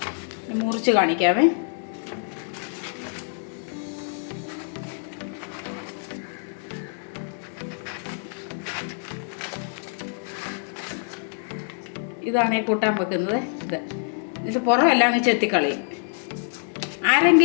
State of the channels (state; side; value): silent; right; 61 dB below the other